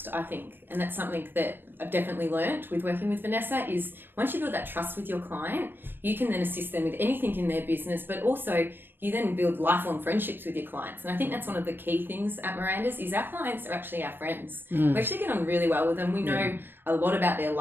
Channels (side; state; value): left; late; 0.099 ms